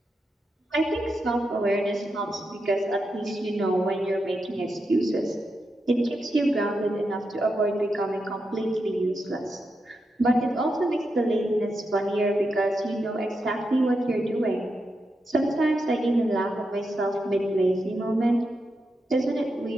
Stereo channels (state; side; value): normal; both; correlation 0.86